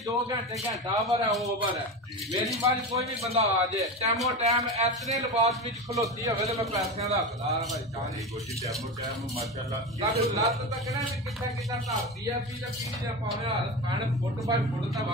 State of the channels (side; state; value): both; normal; correlation 0.23